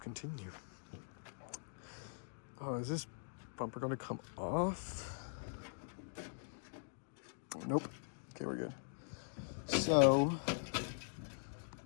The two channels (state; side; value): silent; right; digital silence